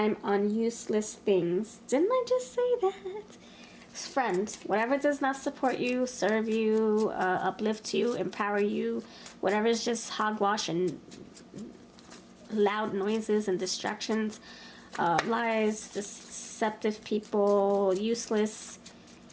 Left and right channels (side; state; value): both; identical; correlation 1.00